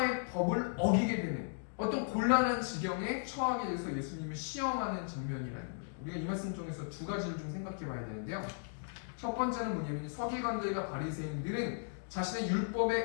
법을 어기게 되는 어떤 곤란한 지경에 처하게 돼서 예수님을 시험하는 장면이라는 거예요. 우리가 이 말씀 중에서 두 가지를 좀 생각해 봐야 되는데요. 첫 번째는 뭐냐면 서기관들과 바리새인들은 자신의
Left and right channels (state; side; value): silent; right; digital silence